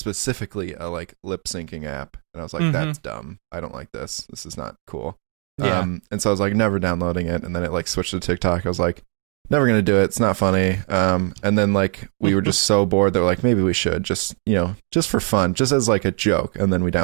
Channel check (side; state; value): left; quieter; 39.9 dB